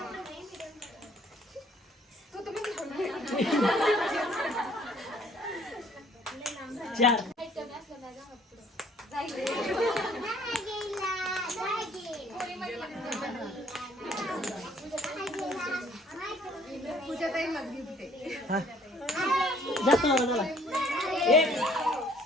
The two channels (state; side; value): normal; both; correlation 0.60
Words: चार जास्त नका चला. एक